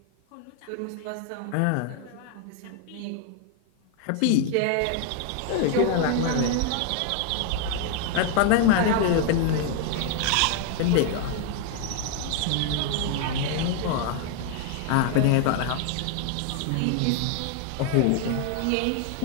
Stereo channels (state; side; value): different; both; correlation 0.00